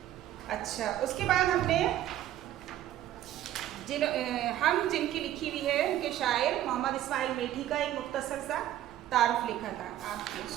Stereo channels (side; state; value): left; quieter; 12.8 dB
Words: अच्छा, उसके बाद हमने जिनकी लिखी हुई है उनके शायर मोहम्मद इस्माइल मिल्टी का एक मुख्तसर सा तारुफ लिखा था, आप